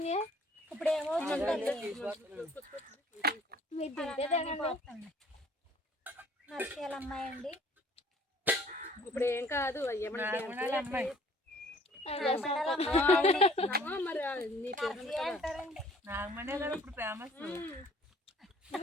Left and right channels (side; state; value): both; normal; correlation 0.55